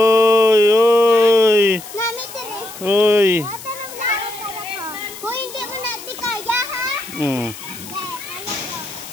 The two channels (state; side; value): noise; left; hiss, 15 dB below the sound